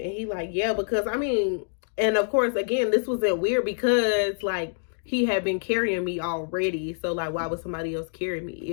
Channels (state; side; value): silent; right; digital silence